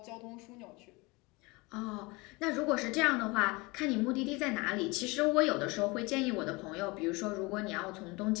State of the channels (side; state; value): right; quieter; 25.0 dB